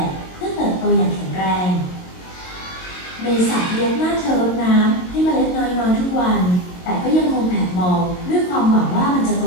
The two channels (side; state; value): right; late; 22 ms